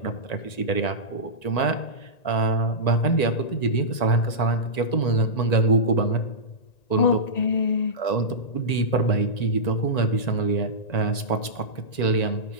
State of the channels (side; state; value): right; late; 1.9 ms